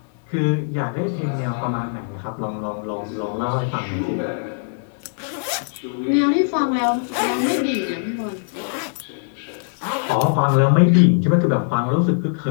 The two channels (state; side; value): silent; right; 62 dB below the other